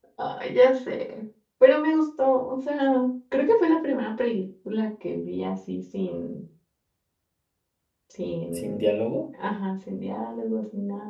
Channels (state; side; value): identical; both; correlation 1.00